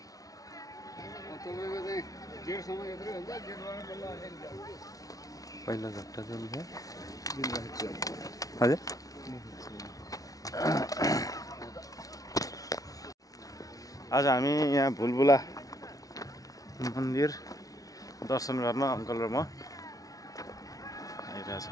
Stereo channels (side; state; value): right; late; 0.18 ms